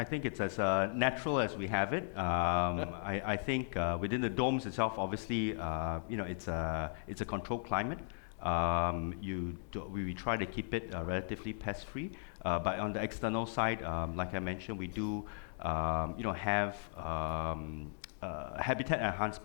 think it's as natural as we have it. I think within the domes itself, obviously, it's a controlled climate. We try to keep it relatively pest-free, but on the external side, like I mentioned, we do have habitat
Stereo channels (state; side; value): silent; right; digital silence